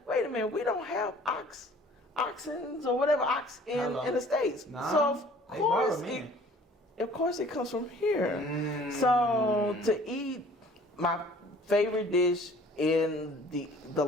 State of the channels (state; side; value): normal; both; correlation 0.52